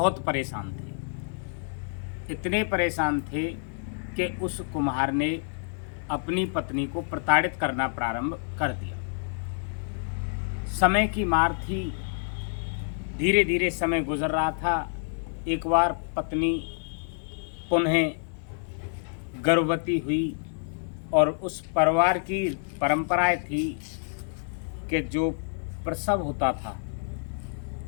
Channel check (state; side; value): silent; right; digital silence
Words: परेशान थे। इतने परेशान थे कि उस कुम्हार ने अपनी पत्नी को प्रताड़ित करना प्रारंभ कर दिया। समय की मार थी। धीरे धीरे समय गुजर रहा था। एक बार पत्नी पुनः गर्भवती हुई, और उस परिवार की परंपराएं थी कि जो प्रसव होता था